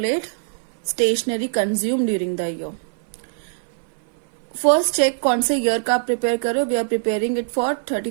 stationery consumed during the year. First check कौन से year का prepare करो. We are preparing it for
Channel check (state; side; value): silent; left; 58 dB below the other